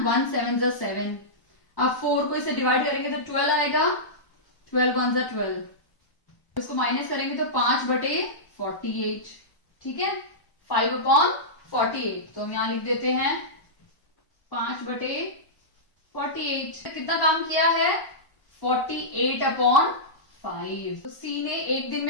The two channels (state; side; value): late; right; 1.0 ms